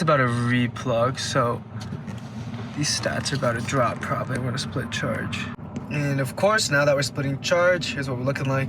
about to replug. So these stats are about to drop probably. We're gonna split charge. And of course, now that we're splitting charge, here's what we're looking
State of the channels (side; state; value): both; identical; correlation 1.00